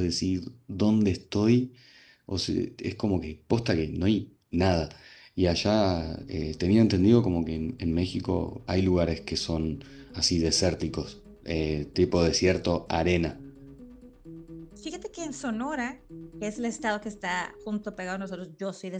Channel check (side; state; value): both; identical; correlation 1.00